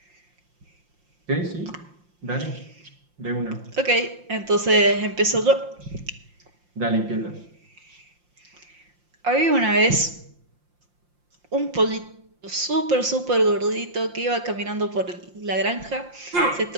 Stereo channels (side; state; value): left; late; 5.7 ms